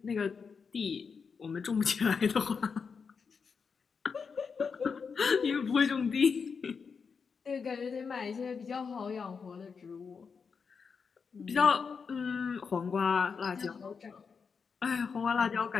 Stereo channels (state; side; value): quieter; right; 5.7 dB